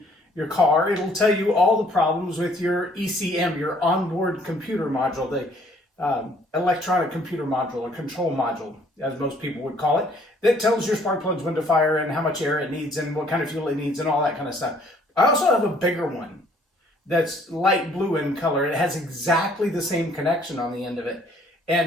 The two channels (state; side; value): normal; both; correlation 0.60